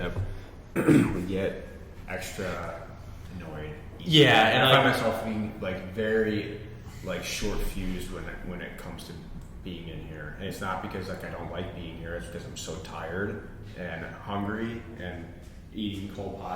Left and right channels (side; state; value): both; identical; correlation 1.00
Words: we get extra annoyed. Yeah, and I find myself being like very like short fused when it comes to being in here, and it's not because like I don't like being here. It's because I'm so tired and hungry and eating cold